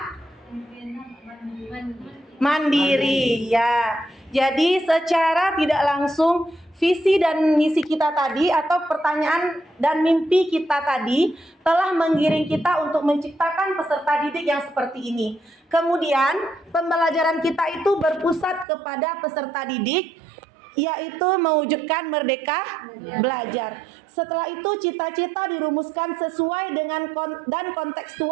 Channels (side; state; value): left; drops out; at 18.7 s